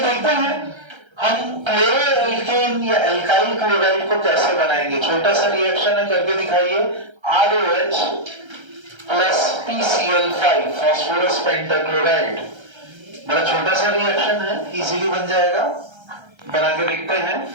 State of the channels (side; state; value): left; late; 1.3 ms